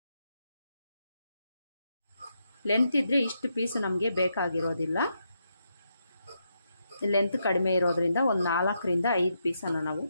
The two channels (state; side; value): inverted; both; correlation -0.81